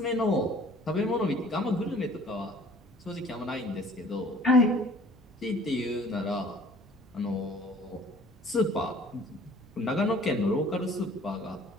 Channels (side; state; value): both; normal; correlation 0.52